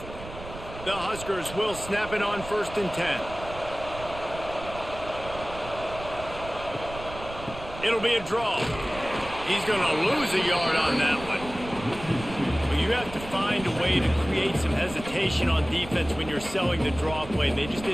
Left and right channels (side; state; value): right; noise; rumble, 13 dB below the sound